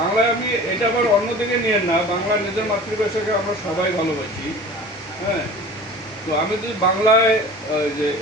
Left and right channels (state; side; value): normal; both; correlation 0.40